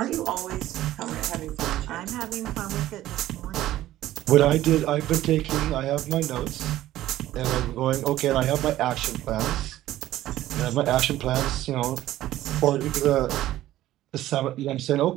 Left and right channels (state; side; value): quieter; left; 14.4 dB